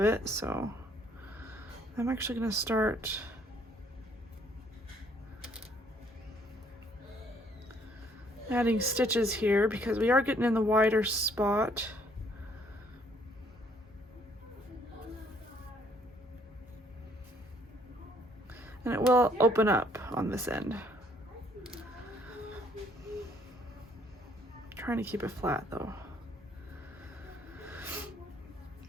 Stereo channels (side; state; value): both; normal; correlation 0.65